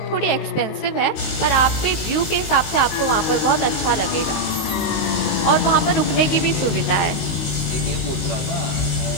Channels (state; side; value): late; right; 19 ms